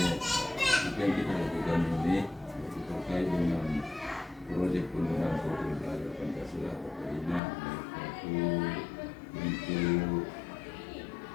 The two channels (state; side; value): drops out; right; at 7.4 s